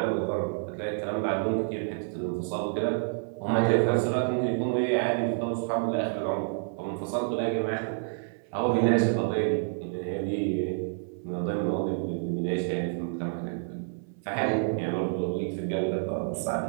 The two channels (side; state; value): left; silent; 59 dB below the other